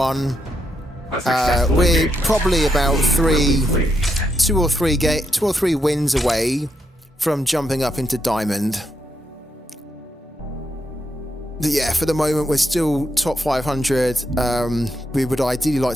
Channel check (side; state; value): both; normal; correlation 0.80